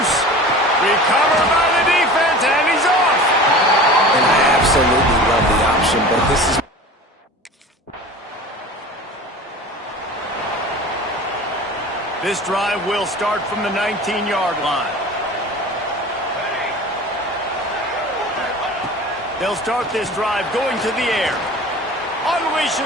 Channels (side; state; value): both; normal; correlation 0.38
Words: Recovered by the defense, and he's off. And I absolutely love the option, but this is... This drive will start from the 19-yard line. They'll start this drive going to the air.